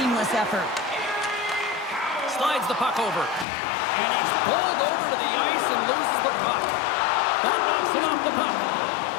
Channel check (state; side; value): drops out; right; at 3.5 s